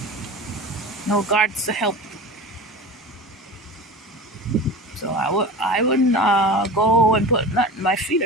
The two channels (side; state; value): both; normal; correlation 0.33